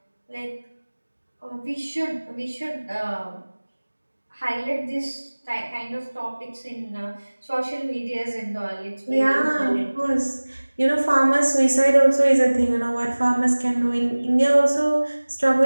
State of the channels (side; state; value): both; inverted; correlation -1.00